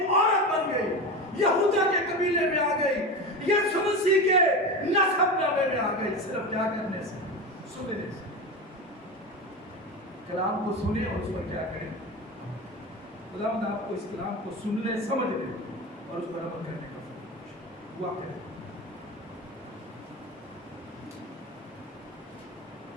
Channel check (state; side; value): normal; both; correlation 0.24